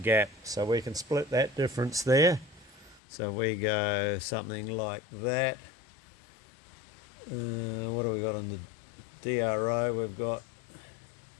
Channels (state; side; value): drops out; right; at 3.0 s